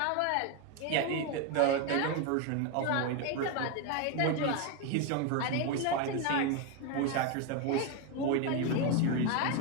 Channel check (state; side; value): different; both; correlation 0.02